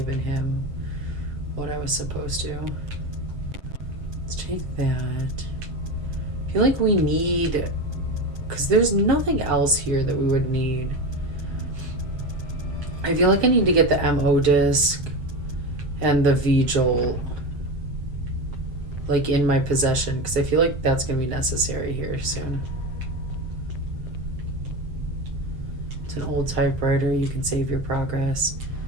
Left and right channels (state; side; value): late; left; 7.7 ms